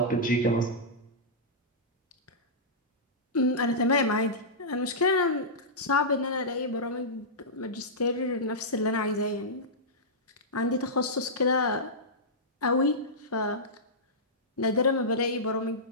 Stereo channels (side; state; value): both; normal; correlation -0.13